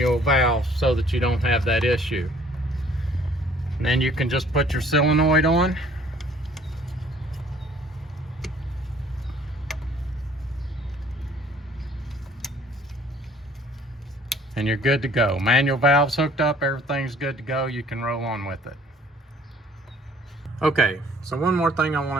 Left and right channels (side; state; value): both; normal; correlation 0.56